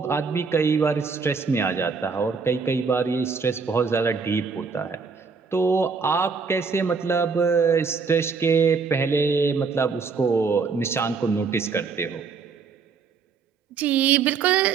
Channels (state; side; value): quieter; left; 5.2 dB